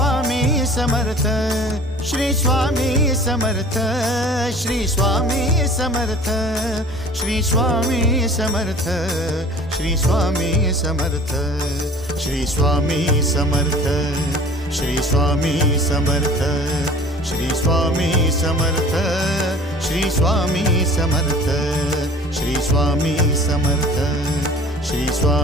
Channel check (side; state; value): both; normal; correlation 0.46